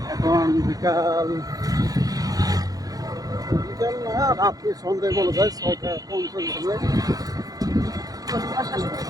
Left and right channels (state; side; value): late; left; 0.18 ms